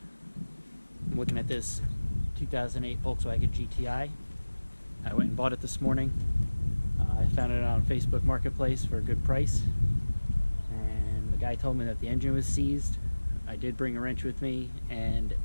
I'm looking at this 2008 Volkswagen GTI. I went and bought it this morning. I found it on Facebook Marketplace for a good price. And the guy told me that the engine was seized. I did bring a wrench with me, and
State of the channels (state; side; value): inverted; both; correlation -1.00